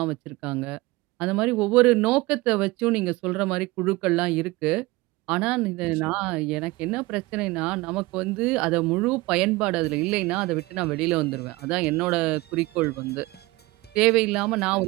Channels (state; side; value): quieter; left; 21.4 dB